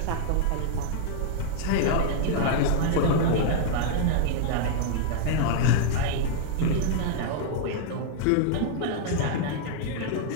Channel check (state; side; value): different; both; correlation -0.01